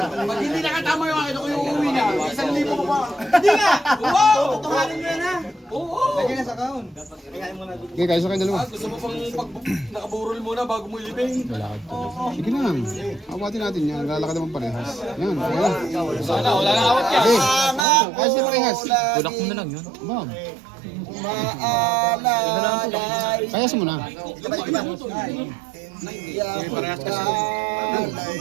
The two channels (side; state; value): left; drops out; at 17.9 s